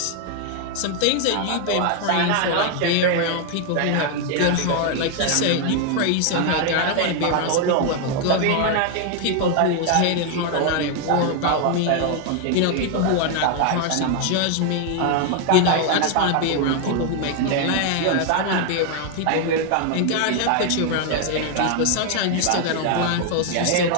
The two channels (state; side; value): different; both; correlation 0.00